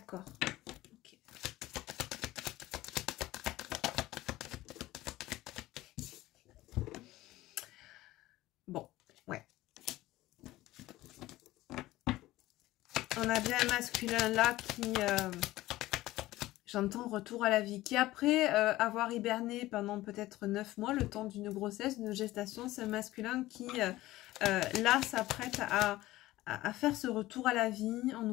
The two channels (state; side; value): quieter; right; 17.0 dB